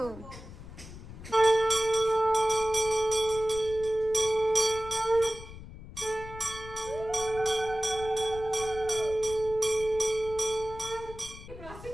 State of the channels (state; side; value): noise; left; rumble, 14 dB below the sound